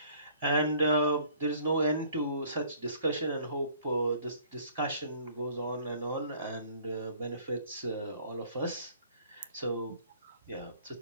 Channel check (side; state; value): both; inverted; correlation -0.56